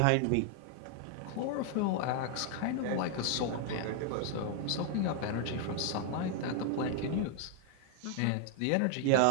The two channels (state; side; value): different; both; correlation 0.00